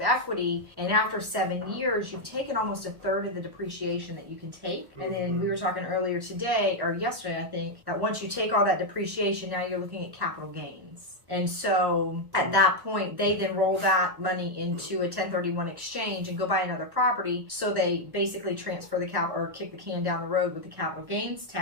equity, and after 7 years you've taken almost a third of the depreciation that you can take. And then we were talking earlier today or yesterday, I think, that once you take all that depreciation, now you're looking at capital gains. And so at that point, they then roll that money into a 1031 exchange and go buy another property. So they basically transfer the cap or kick the can down the road with the capital gains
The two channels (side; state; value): left; late; 1.1 ms